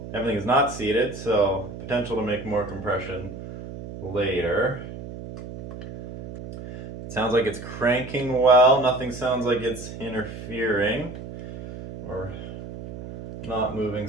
everything is not seated, so potential to make more compression later. It sounds like it's cranking well. Nothing sounds like it's interfering or not moving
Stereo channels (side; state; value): right; noise; hum, 11 dB below the sound